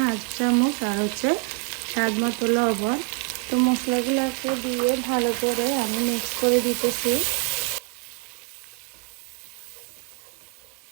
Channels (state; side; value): quieter; left; 37.6 dB